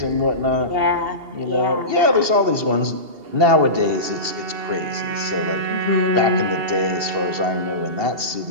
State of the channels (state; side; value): late; left; 2.7 ms